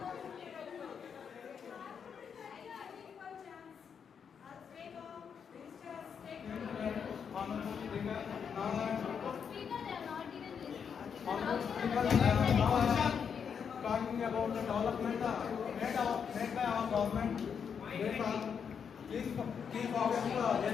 development made by our government. They are key focus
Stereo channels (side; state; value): right; quieter; 7.0 dB